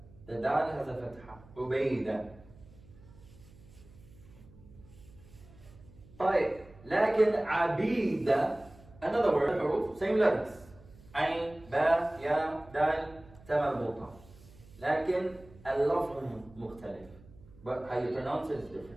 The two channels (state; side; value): noise; right; hum, 23 dB below the sound